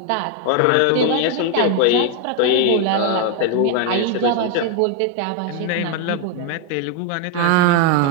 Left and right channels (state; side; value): different; both; correlation 0.01